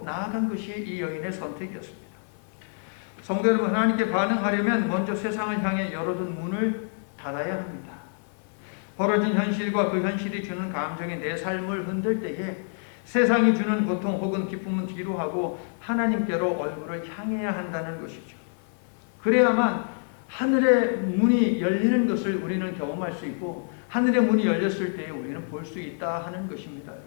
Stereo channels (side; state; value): right; silent; 57 dB below the other